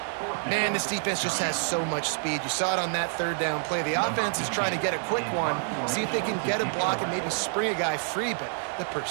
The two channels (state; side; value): silent; left; 60 dB below the other